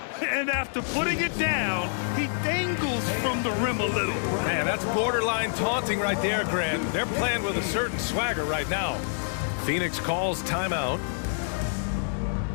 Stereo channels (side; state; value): right; silent; digital silence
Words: And after putting it down, he dangles from the rim a little. Man, that's borderline taunting right there, Grant. They're playing with a certain swagger right now. Phoenix calls timeout.